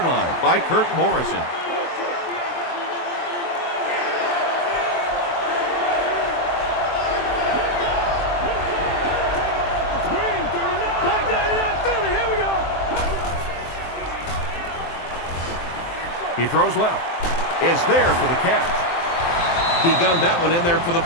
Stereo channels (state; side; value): late; right; 23 ms